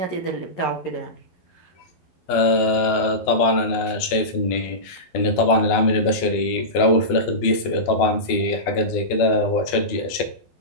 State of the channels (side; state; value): right; late; 12 ms